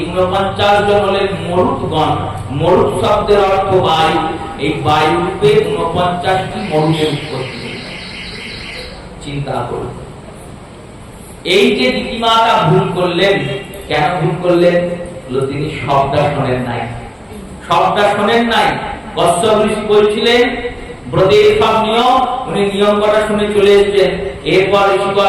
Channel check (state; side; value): identical; both; correlation 1.00